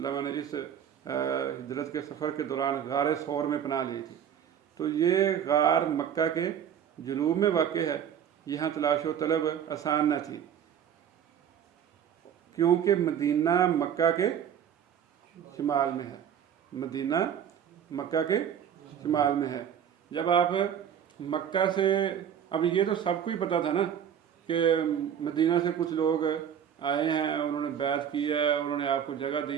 نے اس ہجرت کے سفر کے دوران غار ثور میں پناہ لی تھی۔ تو یہ غار مکہ کے جنوب میں واقع ہے، یہاں تلاش و طلب آسان نہ تھی کیونکہ مدینہ مکہ کے شمال میں ہے، مدینہ مکہ کے شمال میں ہے۔ جب آپ مکہ سے، اب یہ تو سب کو ہی پتہ تھا نا کہ مدینہ سے کچھ لوگ آئے ہیں، انہوں نے بیعت کی ہے، انہوں نے آپ کو جگہ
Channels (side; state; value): left; quieter; 8.9 dB